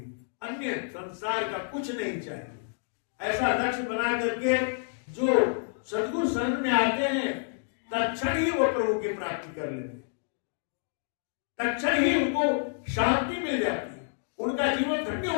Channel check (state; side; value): silent; right; digital silence